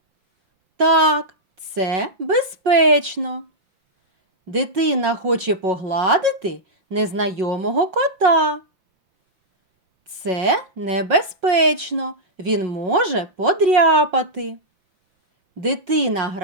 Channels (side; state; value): left; late; 5.5 ms